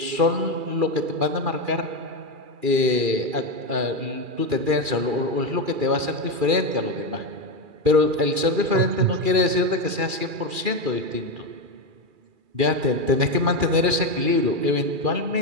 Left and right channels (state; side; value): late; left; 2.4 ms